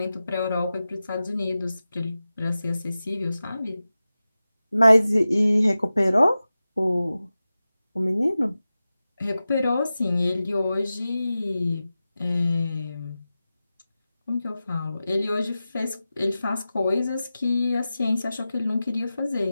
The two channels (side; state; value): both; inverted; correlation -0.94